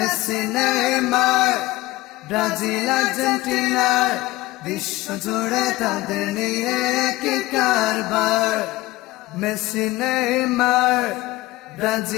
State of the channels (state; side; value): quieter; right; 18.8 dB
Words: নেইমার ব্রাজিল আর্জেন্টিনার বিশ্ব জুড়ে তাদের নিয়ে কি কারবার। মেসি নেইমার